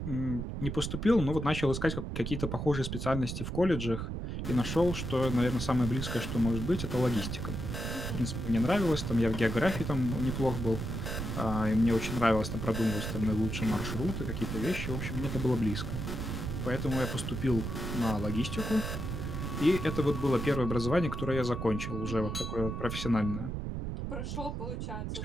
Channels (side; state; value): right; noise; rumble, 4 dB below the sound